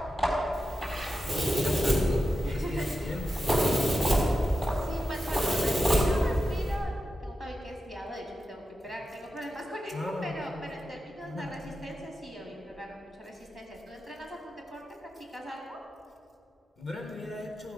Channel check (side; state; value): both; normal; correlation 0.90